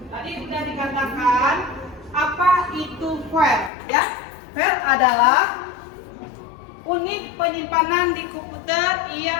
tadi sudah dikatakan apa itu file, ya? File adalah unit penyimpanan di komputer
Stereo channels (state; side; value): drops out; right; at 3.7 s